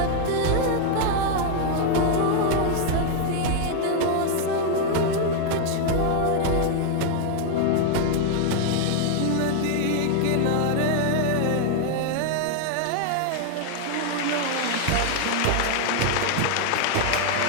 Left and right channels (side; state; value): both; different; correlation 0.00